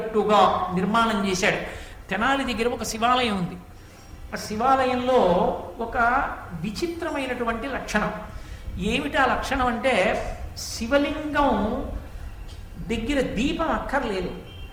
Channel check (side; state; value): both; identical; correlation 1.00